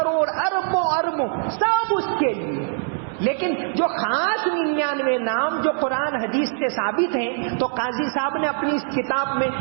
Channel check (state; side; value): silent; left; 58 dB below the other